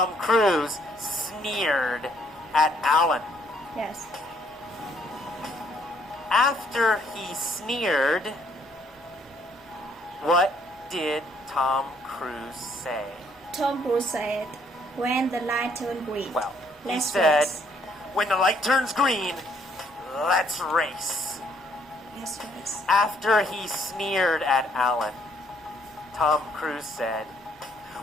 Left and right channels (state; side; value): normal; both; correlation 0.67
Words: Cruise sneered at Alan. Yes. After he sneered, what did Tom Cruise say? Tom Cruise said, "When the light turned green, Well, he let's said, race." when the light turns green, let's race. Let's race. After he sneered at Alan, Tom Cruise said,